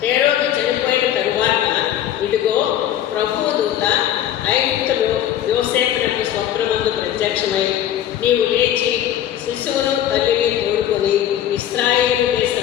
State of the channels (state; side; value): quieter; right; 11.2 dB